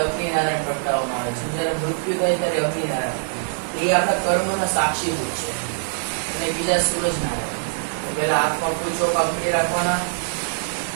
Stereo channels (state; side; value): silent; left; digital silence